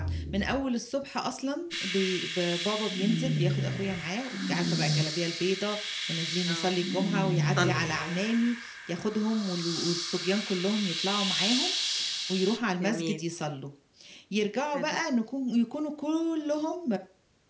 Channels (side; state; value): both; identical; correlation 1.00